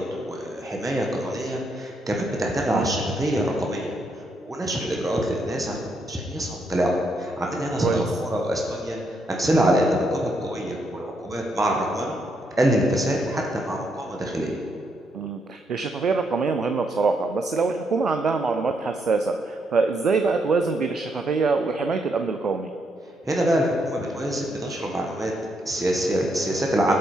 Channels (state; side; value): normal; both; correlation 0.77